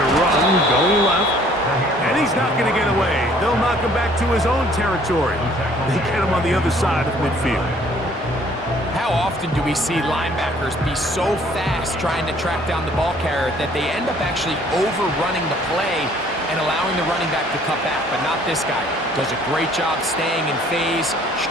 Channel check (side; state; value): both; normal; correlation 0.58